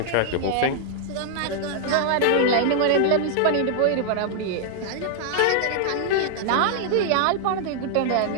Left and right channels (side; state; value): both; different; correlation -0.01